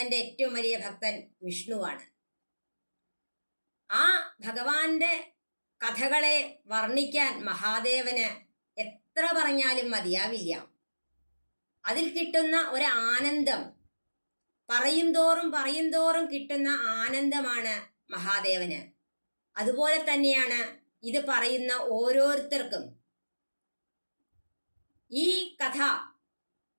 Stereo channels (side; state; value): both; inverted; correlation -1.00